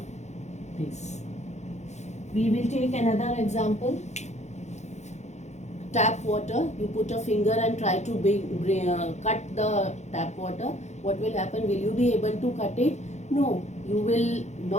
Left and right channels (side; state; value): right; late; 0.33 ms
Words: this. We will take another example. Tap water. You put a finger and try to cut the tap water. What will happen? Will you be able to cut it? No, you will